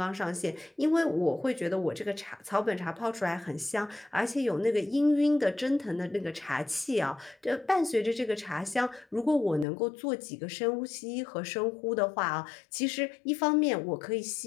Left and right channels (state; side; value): drops out; right; at 9.7 s